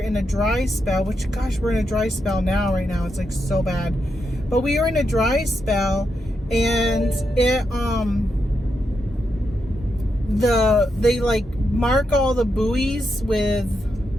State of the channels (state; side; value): normal; both; correlation 0.84